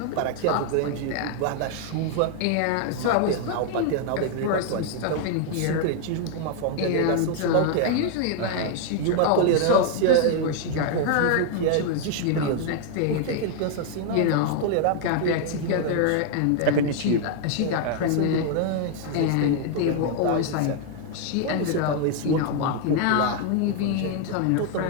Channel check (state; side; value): different; both; correlation 0.00